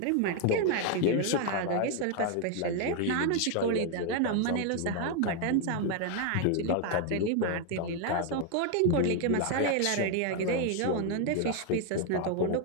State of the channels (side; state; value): both; different; correlation 0.01